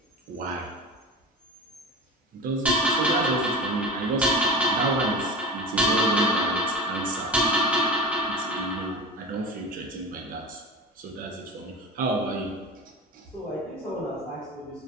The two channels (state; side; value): normal; both; correlation 0.31